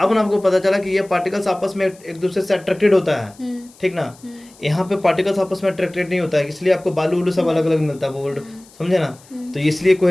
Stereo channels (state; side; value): noise; left; hiss, 26 dB below the sound